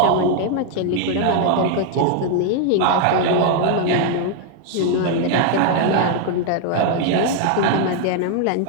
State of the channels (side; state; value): both; different; correlation 0.00